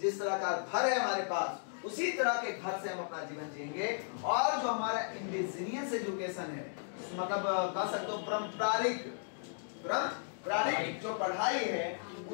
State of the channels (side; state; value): right; silent; digital silence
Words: जिस तरह का घर है हमारे पास, उसी तरह के घर से हम अपना जीवन जिएंगे। और जो हमारा इंडिजिनियस एजुकेशन है, मतलब कह सकते हो पारंपरिक जो पढ़ाई है,